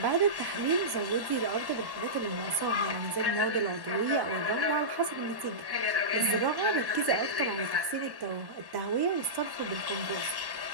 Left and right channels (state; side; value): late; left; 1.1 ms